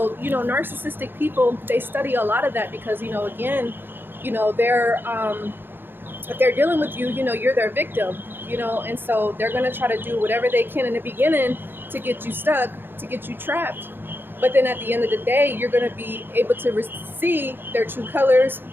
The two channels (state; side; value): late; left; 0.10 ms